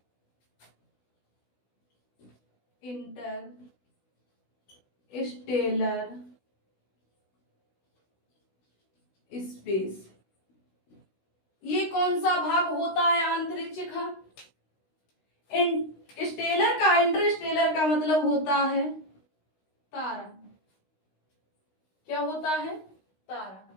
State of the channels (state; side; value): late; right; 16 ms